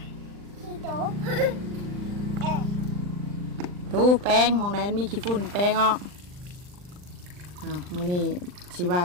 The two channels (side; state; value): left; late; 39 ms